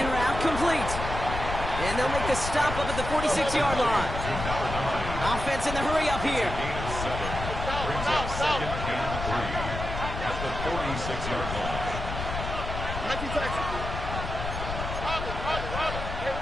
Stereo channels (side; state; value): left; noise; rumble, 5 dB below the sound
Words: route complete. And they'll make the stop up at the 46-yard line. Offense in the hurry up here. Gain of 7. Brings up 2nd and 3 at the 46-yard line.